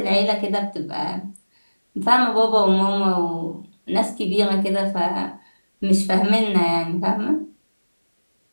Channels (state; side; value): inverted; both; correlation -1.00